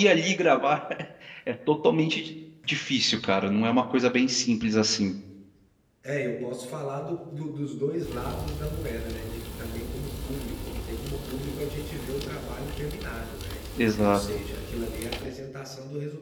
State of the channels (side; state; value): both; identical; correlation 1.00